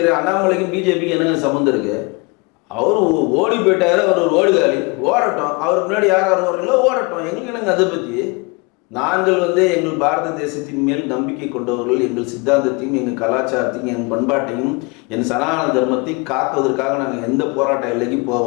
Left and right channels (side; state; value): right; quieter; 29.0 dB